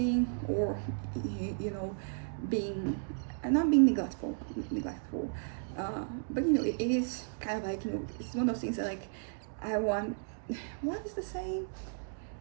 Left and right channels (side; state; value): left; silent; digital silence